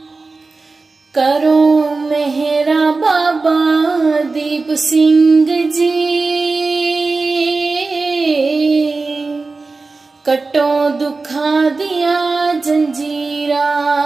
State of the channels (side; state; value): left; quieter; 3.8 dB